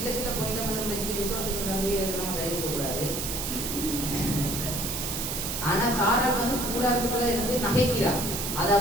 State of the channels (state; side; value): noise; right; hiss, 3 dB below the sound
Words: பாயிண்ட் மட்டும் வச்சுட்டு விசுவாசம் தந்தையை நம்ம கையிருக்க கூடாது. ஆனா சாரால் வந்து கூடாரத்துக்குள்ள இருந்து நகைக்கிறார். அதை